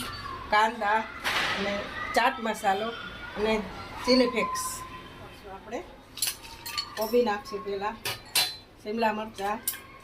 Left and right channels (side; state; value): both; identical; correlation 1.00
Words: કાંદા અને ચાટ મસાલો અને ચીલી ફ્લેક્સ. આપણે કોબી નાખશું પહેલાં, શિમલા મરચાં,